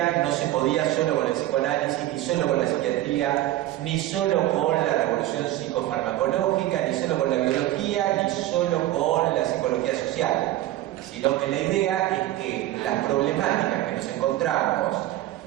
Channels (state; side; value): quieter; left; 14.8 dB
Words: no se podía solo con el psicoanálisis, ni solo con la psiquiatría, ni solo con la revolución psicofarmacológica, ni solo con la biología, ni solo con la psicología social, sino que la idea es que las problemáticas que nos encontramos